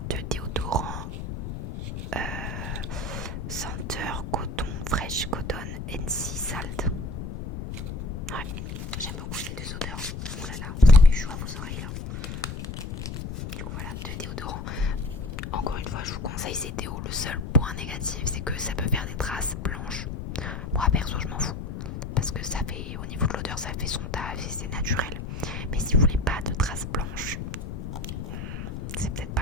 de déodorant senteur coton, fresh cotton NC Salt. Ouais, j'aime beaucoup ces 2 odeurs. Oh là là, vous avez chaud à vos oreilles là. Du coup voilà, 2 déodorants. Encore une fois, je vous conseille ces déos. Le seul point négatif, c'est que ça peut faire des traces blanches. Moi perso, je m'en fous. Parce que ça fait, au niveau de l'odeur, ça fait son taf et c'est naturel. Mais si vous voulez pas de traces blanches, c'est peut-être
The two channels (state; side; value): noise; left; rumble, 6 dB below the sound